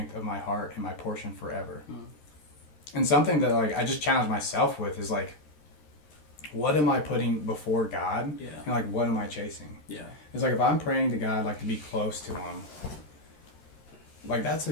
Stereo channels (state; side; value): late; right; 13 ms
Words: of my heart and my portion forever." And something that like I just challenge myself with is like, what am I putting before God? Yeah. And like, what am I chasing? Yeah. It's like, if I'm praying to God, like to be close to him, like that's